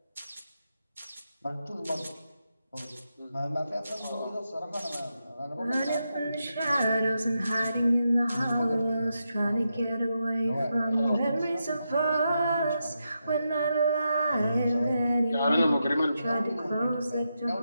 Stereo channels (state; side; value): inverted; both; correlation -0.86